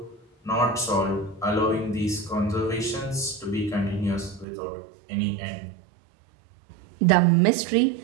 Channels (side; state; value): left; drops out; at 4.5 s